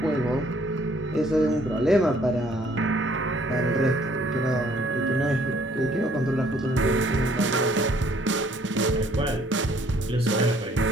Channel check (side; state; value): both; normal; correlation 0.61